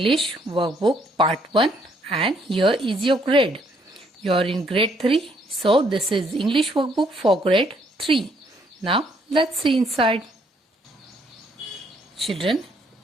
workbook part 1 and here is your grade. You are in grade 3, so this is English workbook for grade 3. Now let's see inside. Children,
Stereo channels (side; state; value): both; normal; correlation 0.68